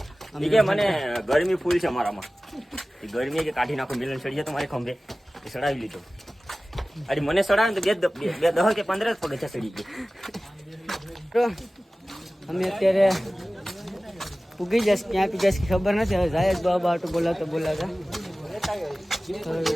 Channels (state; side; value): normal; both; correlation 0.97